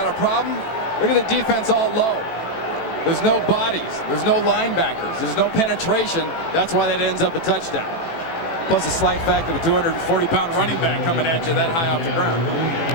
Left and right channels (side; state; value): right; late; 18 ms